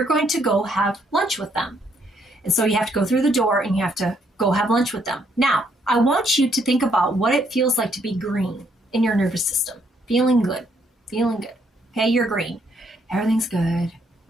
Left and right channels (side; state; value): both; normal; correlation 0.71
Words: going to go have lunch with them. And so you have to go through the door and you have to go have lunch with them. Now, I want you to think about what it feels like to be green in your nervous system. Feeling good. Okay, you're green. Everything's good.